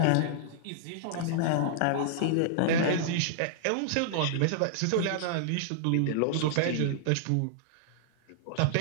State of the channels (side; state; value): both; different; correlation -0.01